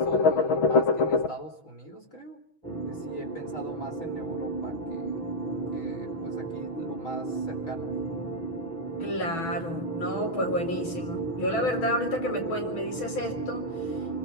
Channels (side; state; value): right; late; 6.1 ms